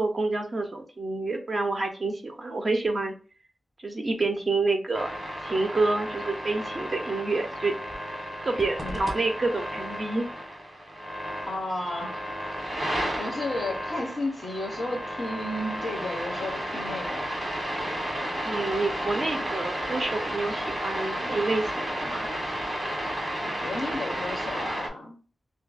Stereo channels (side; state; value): both; normal; correlation 0.90